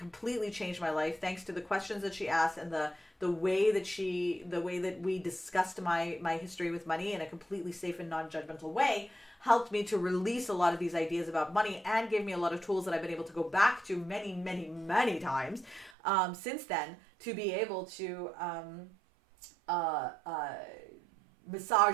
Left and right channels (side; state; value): left; drops out; at 15.9 s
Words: changed my life thanks to the questions that she asked and the way that we discussed my history with money in a completely safe and non-judgmental way helped me to release a lot of these ideas about money and gave me a lot of tools that I've been able to go back to many times since then to be able to